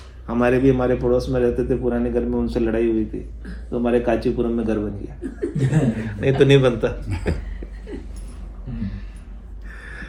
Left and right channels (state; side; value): identical; both; correlation 1.00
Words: हमारे पड़ोस में रहते थे पुराने घर में, उनसे लड़ाई हुई थी तो हमारे कांचीपुरम में घर बन गया। नहीं तो नहीं बनता।